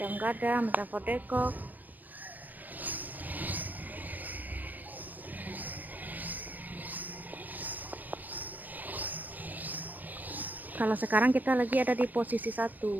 Gadang, Metafort Depok. Kalau sekarang kita lagi ada di posisi 1,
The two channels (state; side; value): late; left; 0.086 ms